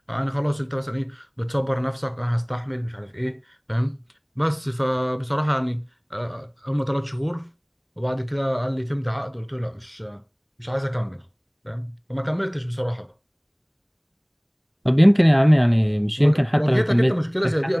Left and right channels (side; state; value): both; identical; correlation 1.00